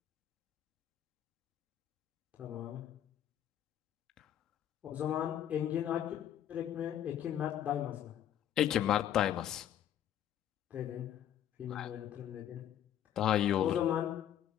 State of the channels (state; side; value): quieter; right; 10.7 dB